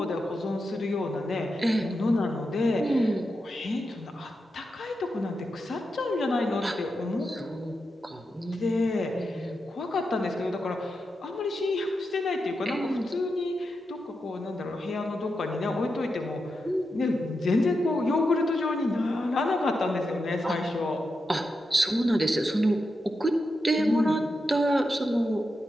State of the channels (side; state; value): both; normal; correlation 0.87